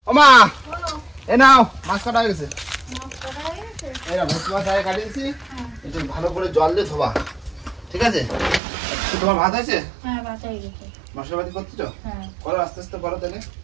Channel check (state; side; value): drops out; left; at 8.6 s